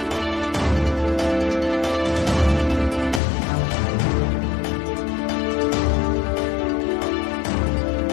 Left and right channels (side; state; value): right; drops out; at 3.2 s